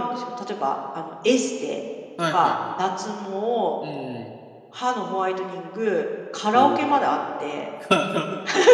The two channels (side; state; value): both; identical; correlation 1.00